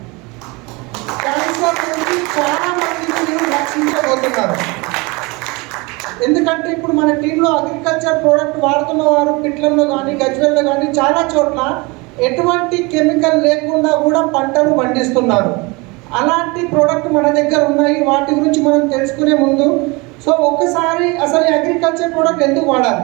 క్యాన్సర్ నుంచి చాలామందిని మీరు రక్షించబోతున్నారు. ఎందుకంటే ఇప్పుడు మన టీంలో అగ్రికల్చర్ ప్రోడక్ట్ వాడుతున్న వారు పిట్లంలో కానీ గజ్వెల్లో కానీ చాలా చోట్ల ఎటువంటి కెమికల్ లేకుండా కూడా పంటలు పండిస్తున్నారు. అలాంటి ప్రోడక్ట్ మన దగ్గర ఉన్నాయి. వాటి గురించి మనం తెలుసుకునే ముందు, సో ఒకసారి అసలు అగ్రికల్చర్ ప్రోడక్ట్ ఎందుకు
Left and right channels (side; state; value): left; quieter; 26.1 dB